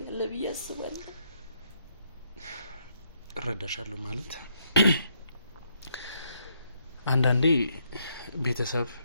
ብዬ አስባለሁ። እረዳሻለሁ ማለት አንዳንዴ ቤተሰብ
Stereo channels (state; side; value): inverted; both; correlation -0.75